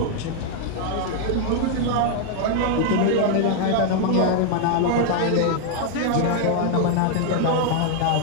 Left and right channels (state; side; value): different; both; correlation 0.00